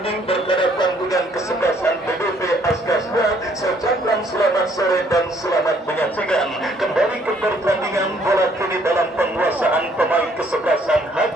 berhadapan dengan kesebelasan BBB Askasda. Saya ucapkan selamat sore dan selamat menyaksikan kembali ke pertandingan bola kini dalam penguasaan pemain kesebelasan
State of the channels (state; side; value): normal; both; correlation 0.65